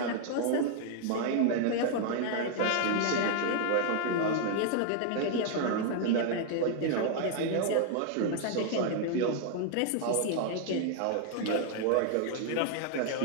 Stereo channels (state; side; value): different; both; correlation 0.00